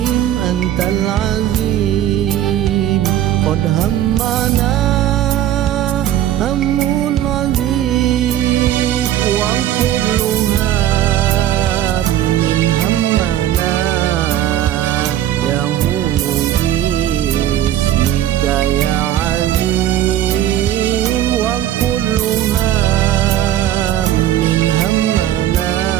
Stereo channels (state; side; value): quieter; left; 11.9 dB